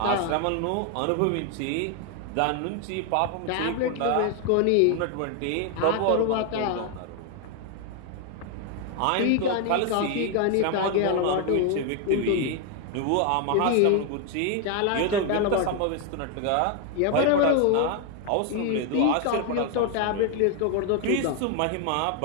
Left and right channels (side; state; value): both; different; correlation 0.01